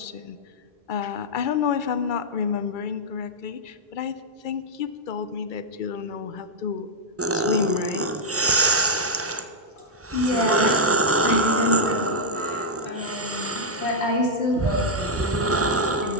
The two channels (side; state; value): both; normal; correlation -0.05